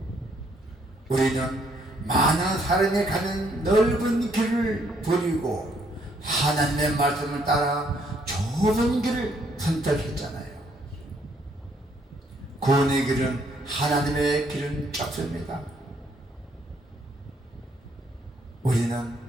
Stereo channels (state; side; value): normal; both; correlation 0.69